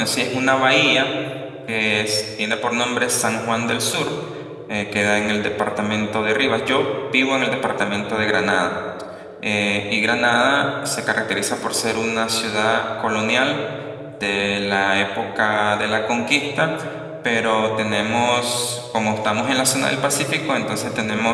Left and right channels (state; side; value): identical; both; correlation 1.00